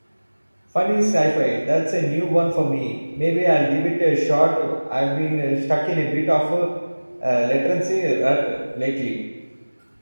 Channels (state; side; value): inverted; both; correlation -1.00